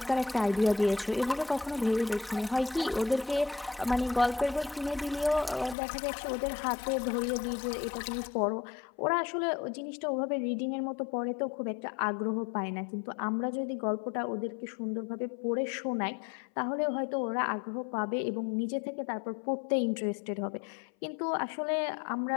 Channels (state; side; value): drops out; right; at 5.8 s